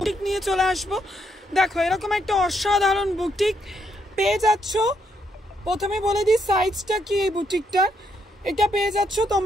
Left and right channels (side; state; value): both; normal; correlation 0.76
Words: নিয়ে চলে আসবো। দেখো এরকম একটা অসাধারণ বুটিক পেয়ে যাচ্ছ। প্রথমে বলে দিই সাইজটা কি এই বুটিকটার। এটা পেয়ে যাচ্ছ